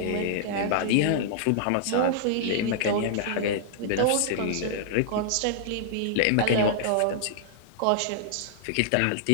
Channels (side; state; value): both; different; correlation -0.01